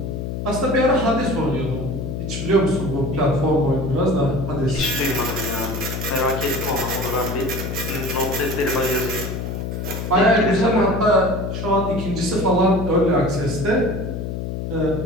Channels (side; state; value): left; noise; hum, 4 dB below the sound